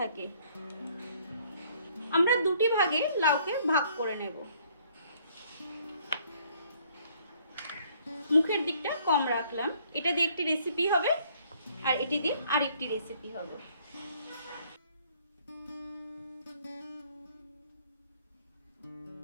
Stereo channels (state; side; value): inverted; both; correlation -0.62